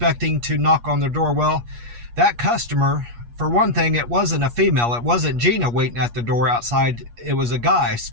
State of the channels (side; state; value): left; late; 8.4 ms